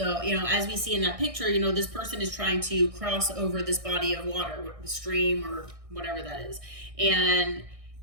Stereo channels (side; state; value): left; late; 1.6 ms